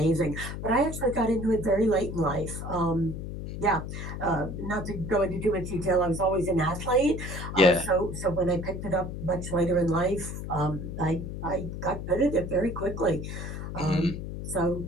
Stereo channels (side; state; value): left; noise; hum, 7 dB below the sound